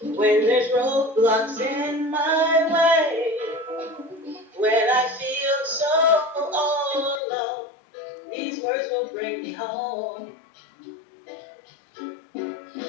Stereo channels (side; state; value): right; drops out; at 7.2 s